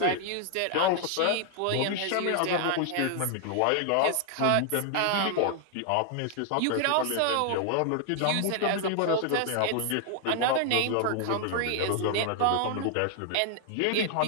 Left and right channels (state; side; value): different; both; correlation 0.00